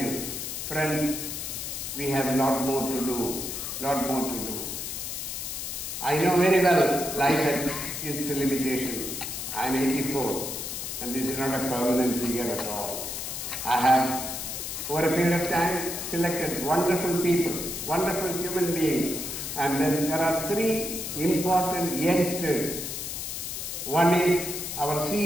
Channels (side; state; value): left; noise; hiss, 5 dB below the sound